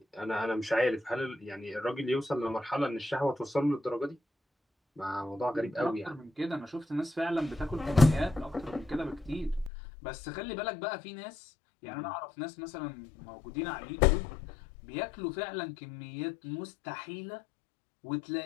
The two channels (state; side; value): drops out; right; at 9.7 s